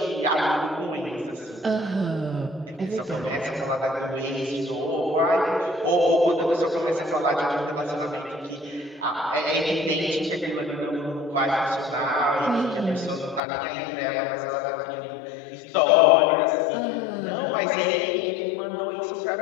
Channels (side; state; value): right; drops out; at 13.4 s